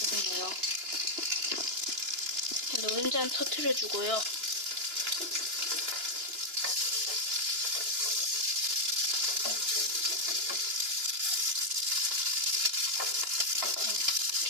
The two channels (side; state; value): left; late; 2.9 ms